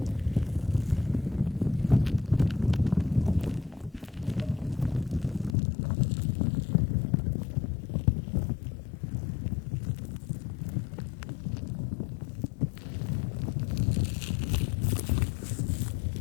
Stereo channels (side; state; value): right; drops out; at 5.6 s